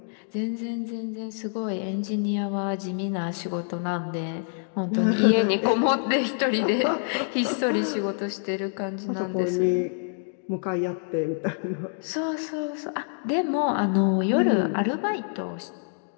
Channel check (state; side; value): silent; right; digital silence